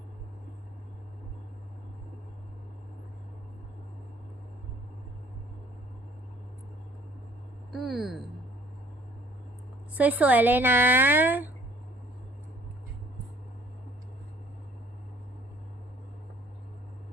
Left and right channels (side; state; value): both; normal; correlation 0.57